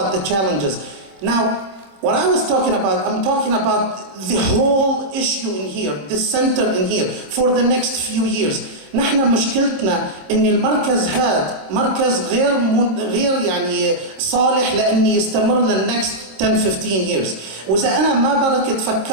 the challenges. Now, what I was talking about, I'm talking about the whole issue in here, the center in here, for the next few years. نحن مشكلتنا ان المركز هذا مركز غير يعني صالح لان يستمر للنكست 10 15 years. واذا انا ما بركت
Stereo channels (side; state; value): left; late; 26 ms